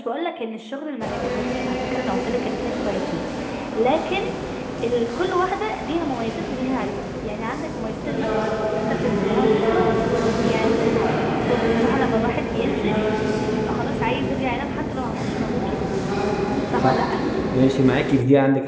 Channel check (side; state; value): both; identical; correlation 1.00